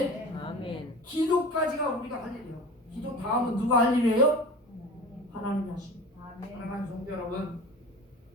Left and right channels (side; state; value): both; normal; correlation 0.36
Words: 아멘. 기도까지가 우리가 할 일이에요. 기도 다음은 누가 할 일이에요? 하나님이 하십니다. 사랑하는 성도 여러분,